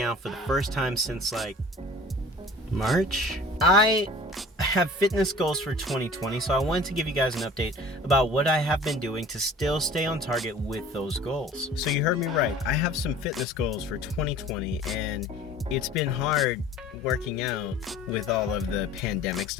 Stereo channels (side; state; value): both; normal; correlation 0.45